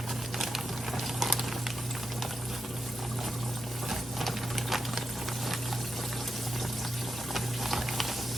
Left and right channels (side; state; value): both; normal; correlation 0.88